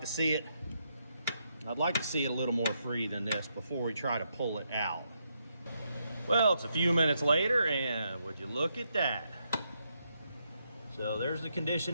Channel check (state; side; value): inverted; both; correlation -0.80